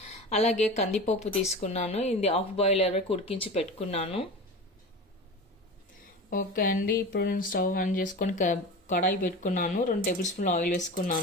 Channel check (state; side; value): normal; both; correlation 0.31